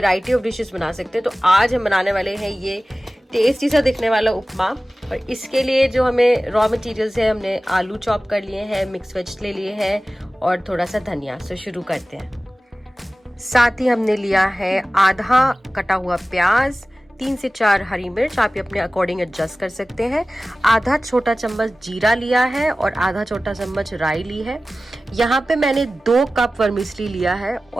ऑफ डिशेस बना सकते हैं। तो आज हम बनाने वाले हैं ये टेस्टी सा दिखने वाला उपमा। और इसके लिए जो हमें रॉ मटेरियल्स है, हमने आलू चॉप कर लिए हैं, मिक्स वेज ले लिए हैं और थोड़ा सा धनिया। तो शुरू करते हैं। साथ ही हमने लिया है आधा कटा हुआ प्याज, 3 से 4 हरी मिर्च, आप ये अपने अकॉर्डिंग एडजस्ट कर सकते हैं। आधा छोटा चम्मच जीरा लिया है और आधा छोटा चम्मच राई ली है। यहाँ पे मैंने 2 कप वर्मिसली लिया है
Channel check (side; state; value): both; normal; correlation 0.97